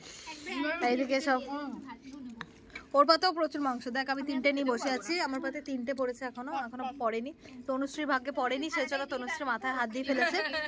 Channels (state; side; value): identical; both; correlation 1.00